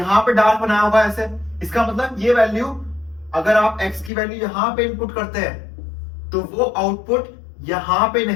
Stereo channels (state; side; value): drops out; right; at 4.1 s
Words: पे डार्क बनाया होगा ऐसे। इसका मतलब ये वैल्यू, अगर आप x की वैल्यू यहां पे इनपुट करते हैं तो वो आउटपुट यहां पे